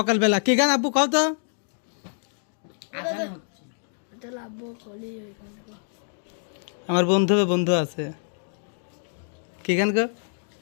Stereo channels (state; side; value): silent; right; 61 dB below the other